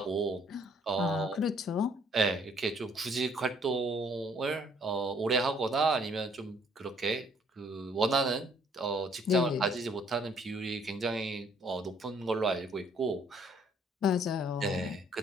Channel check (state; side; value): normal; both; correlation 0.63